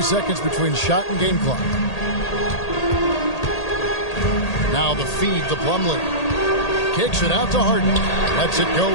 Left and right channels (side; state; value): right; late; 1.8 ms